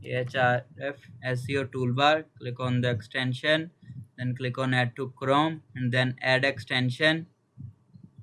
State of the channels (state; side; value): identical; both; correlation 1.00